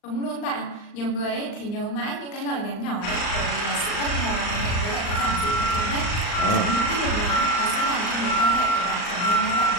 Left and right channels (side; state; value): right; late; 39 ms